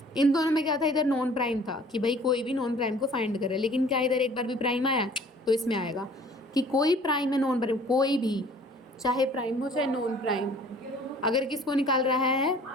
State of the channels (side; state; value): both; normal; correlation 0.52